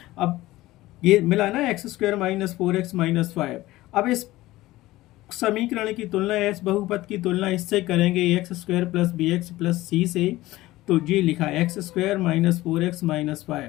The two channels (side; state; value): right; quieter; 17.5 dB